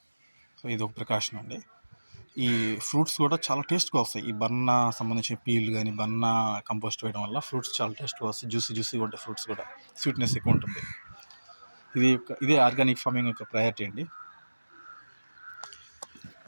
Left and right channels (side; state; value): both; inverted; correlation -1.00